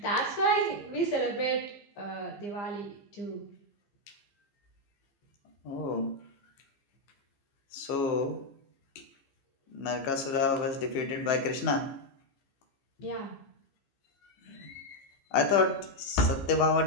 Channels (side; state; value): right; late; 15 ms